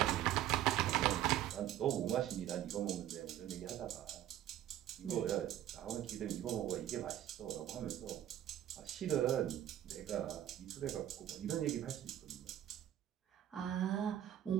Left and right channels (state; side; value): quieter; left; 12.1 dB